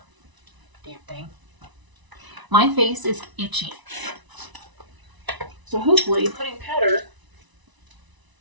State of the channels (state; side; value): late; left; 1.0 ms